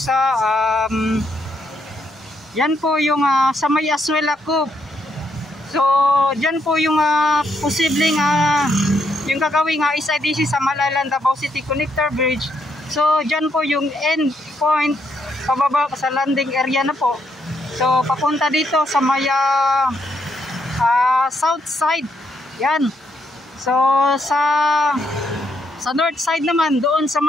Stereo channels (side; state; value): both; normal; correlation 0.76